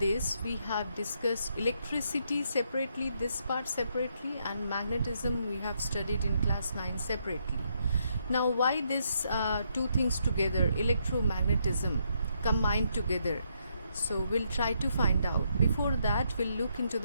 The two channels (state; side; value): inverted; both; correlation -0.76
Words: we have discussed electricity separately, this part separately, and magnetism we have studied in class 9 separately. Now why this two things together, electromagnetism combined together? So we'll try to find out. Before that we'll look into